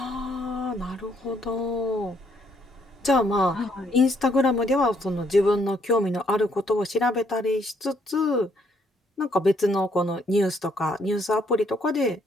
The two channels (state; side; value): normal; both; correlation 0.70